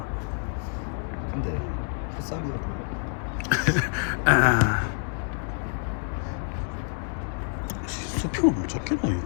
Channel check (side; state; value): right; silent; 60 dB below the other